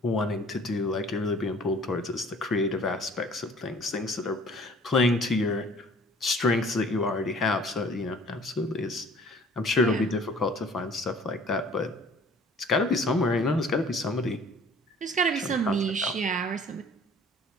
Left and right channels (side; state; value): both; normal; correlation 0.52